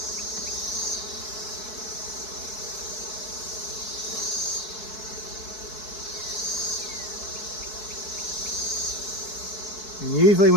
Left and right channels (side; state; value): right; late; 4.6 ms